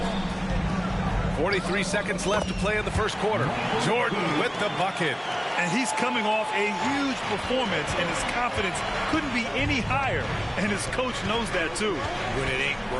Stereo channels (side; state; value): both; identical; correlation 1.00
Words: 43 seconds left to play in the first quarter. Jordan with the bucket. And he's coming off a huge performance, and his confidence couldn't be any higher. And his coach knows that, too. When it ain't